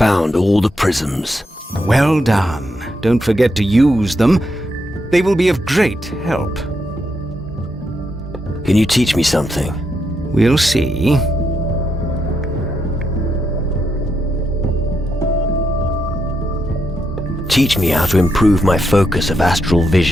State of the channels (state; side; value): normal; both; correlation 0.81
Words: all the prisms. Well done. Don't forget to use them. They will be of great help. Can you teach me something? We'll see. Teach me how to improve my focus of astral